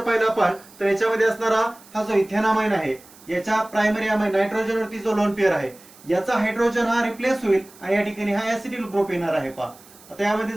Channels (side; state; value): right; noise; hiss, 24 dB below the sound